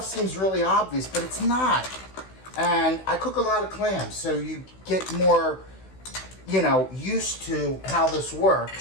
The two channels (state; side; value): late; right; 16 ms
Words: seems really obvious, but it's not. And I cook a lot of clams, so you get more, used to how this